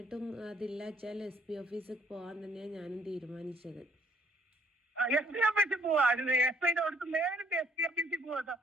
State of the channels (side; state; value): both; normal; correlation 0.65